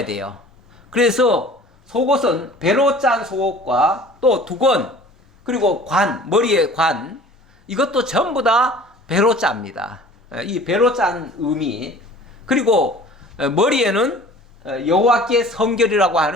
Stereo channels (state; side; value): normal; both; correlation 0.46